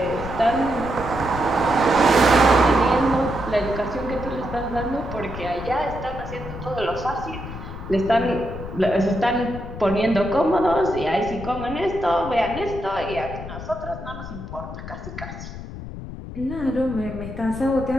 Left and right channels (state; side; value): noise; left; rumble, 10 dB below the sound